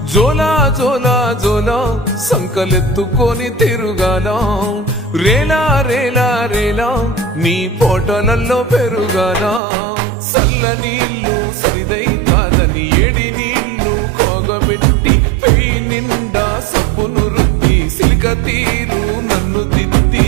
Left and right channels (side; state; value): left; drops out; at 9.6 s